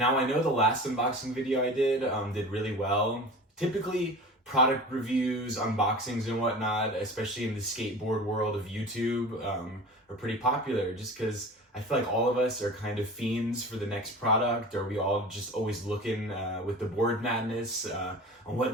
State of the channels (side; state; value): both; normal; correlation 0.36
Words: I know the last unboxing video I did really well. Typically product reviews, unboxings and whatnot, especially in the skateboard world of YouTube, are pretty popular just because I feel like all of us are kind of fiends for the next product, or we all just always looking with the board madness on